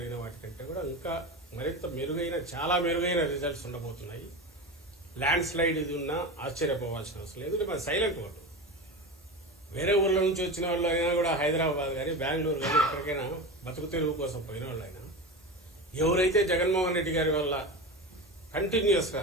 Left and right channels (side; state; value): both; normal; correlation 0.25